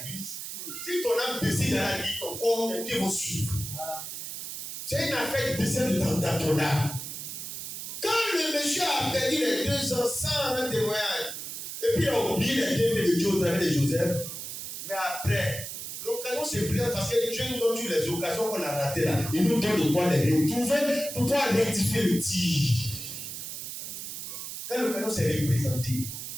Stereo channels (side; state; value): right; noise; hiss, 7 dB below the sound